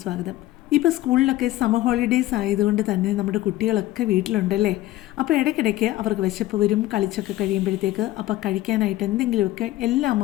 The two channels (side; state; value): right; quieter; 15.9 dB